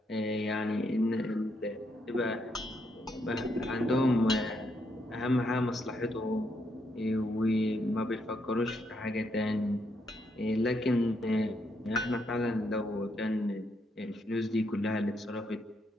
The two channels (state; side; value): normal; both; correlation 0.77